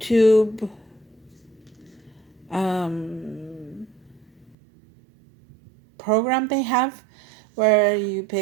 program they have where you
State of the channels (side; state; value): left; drops out; at 4.5 s